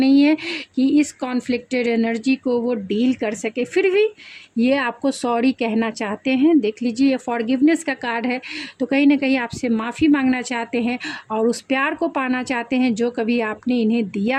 है कि इस कॉन्फ्लिक्टेड एनर्जी को वो डील कर सके। फिर भी ये आपको सॉरी कहना चाहते हैं। देख लीजिए, ये फॉरगिवनेस का कार्ड है, तो कहीं ना कहीं आपसे माफ़ी मांगना चाहते हैं और उस प्यार को पाना चाहते हैं जो कभी आपने इन्हें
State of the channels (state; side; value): identical; both; correlation 1.00